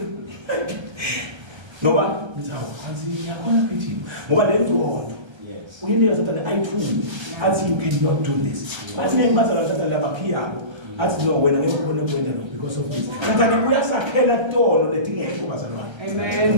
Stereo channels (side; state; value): left; late; 1.3 ms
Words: ngoba ngizawo kanzi yakhona phithi ngoba lengcondo uyinike sathana ayithuli athi you cannot do this bathi ngibazala sathana labaphiyabo athi no wena ngeke ubone kwenda lo because of this sathana uyasakhela tono letingekho bazalwane amen